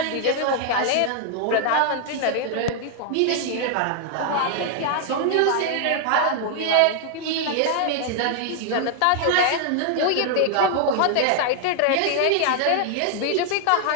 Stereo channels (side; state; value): both; different; correlation 0.00